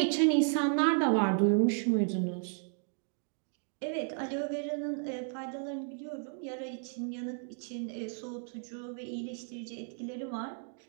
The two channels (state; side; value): silent; left; 55 dB below the other